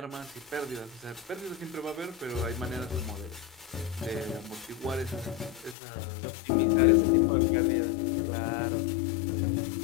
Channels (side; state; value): right; drops out; at 5.8 s